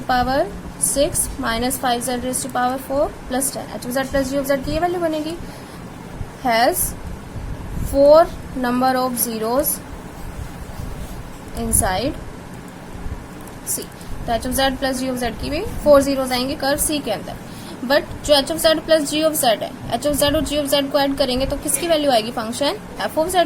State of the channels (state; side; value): identical; both; correlation 1.00